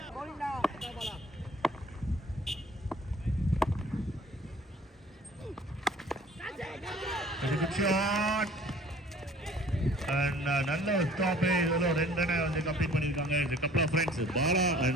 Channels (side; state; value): both; normal; correlation 0.52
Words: நல்ல ஒரு ஸ்டாப். ரெண்டு ரன் வந்து கம்ப்ளீட் பண்ணிருக்காங்க. இந்த couple of friends Bala